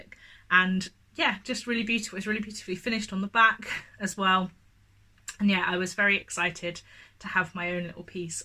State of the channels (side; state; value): both; identical; correlation 1.00